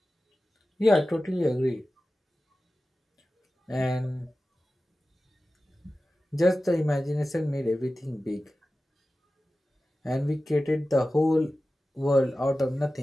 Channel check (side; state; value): both; normal; correlation 0.95